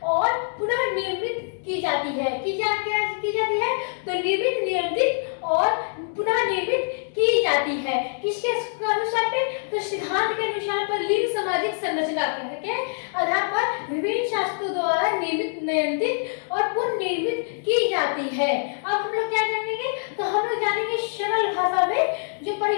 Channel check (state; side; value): silent; right; digital silence